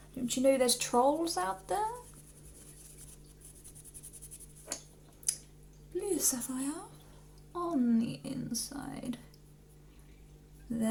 Don't you know there's trolls out there? Blue sapphire on the inside.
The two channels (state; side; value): identical; both; correlation 1.00